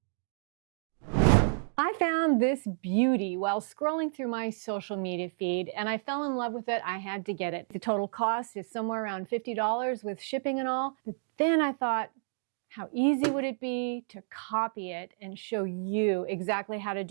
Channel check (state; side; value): silent; left; digital silence